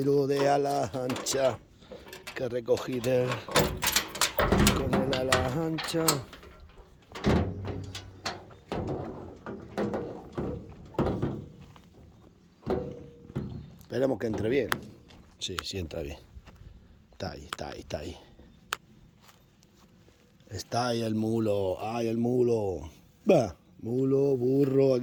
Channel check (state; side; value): identical; both; correlation 1.00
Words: de ala ancha que recogí con el ala ancha. Esperemos que entre bien. Sí, sí entra bien. Está ahí, está ahí, está ahí. Está ahí el mulo, ¡ay, el mulo! Va, mulo, burro,